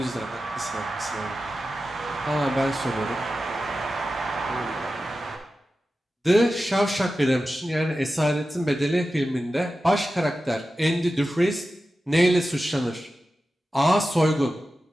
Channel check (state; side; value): normal; both; correlation 0.93